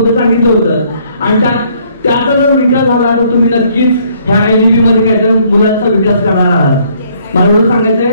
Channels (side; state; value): both; inverted; correlation -0.65